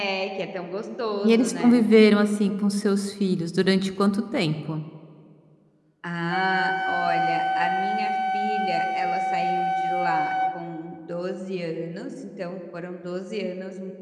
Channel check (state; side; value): identical; both; correlation 1.00